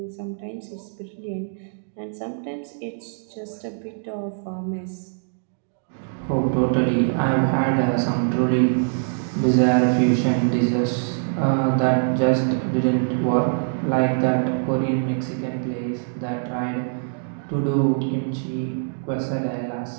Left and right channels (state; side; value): silent; left; digital silence